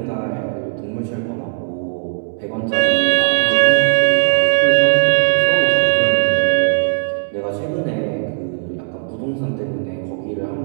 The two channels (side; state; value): left; silent; 68 dB below the other